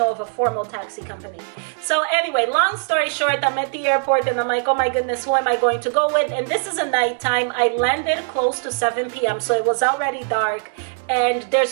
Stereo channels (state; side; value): silent; left; 65 dB below the other